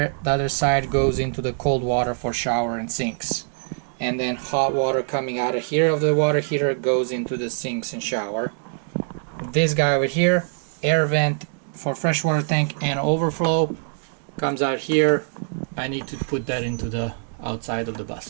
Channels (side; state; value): left; silent; digital silence